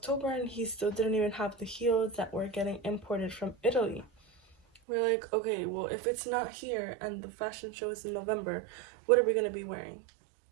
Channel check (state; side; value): drops out; left; at 4.8 s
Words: and he still didn't even have the heels that were getting imported from Italy. We're like, okay, well, if it's not here and the fashion show is in November, what are we gonna be wearing?